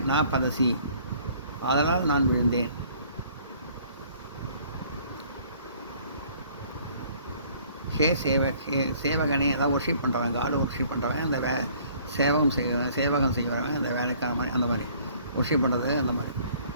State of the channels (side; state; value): both; inverted; correlation -0.57